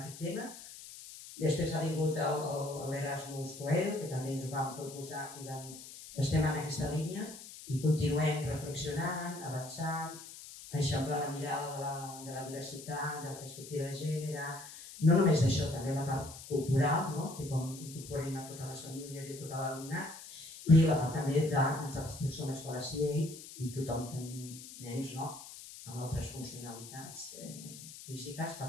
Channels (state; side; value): noise; left; hiss, 14 dB below the sound